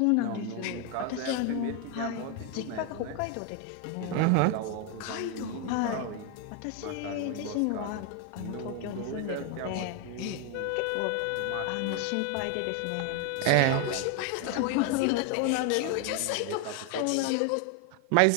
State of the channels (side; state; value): both; different; correlation 0.01